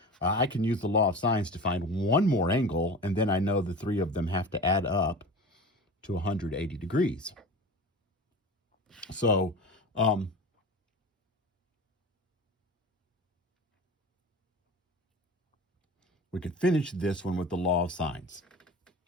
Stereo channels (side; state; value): both; normal; correlation 0.33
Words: I can use the law of sines to find one more angle, and then I know the 3 of them have to add up to 180 degrees. So, we could finish this one with the law of sines.